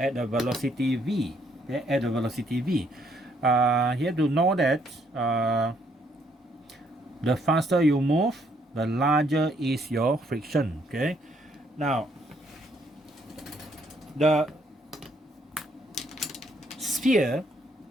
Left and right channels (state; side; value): normal; both; correlation 0.69